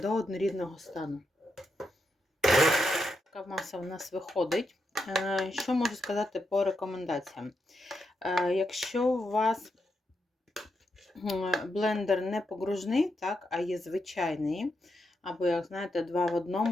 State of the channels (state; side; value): normal; both; correlation 0.83